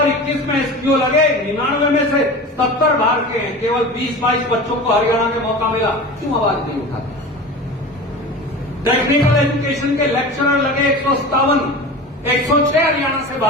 में एसपीओ लगे, 99 में से 70 बाहर के हैं, केवल 20-22 बच्चों को हरियाणा में मौका मिला, क्यों आवाज नहीं उठाते? टेक्निकल एजुकेशन के लेक्चरर लगे 157, 106 हरियाणा से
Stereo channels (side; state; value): both; normal; correlation 0.33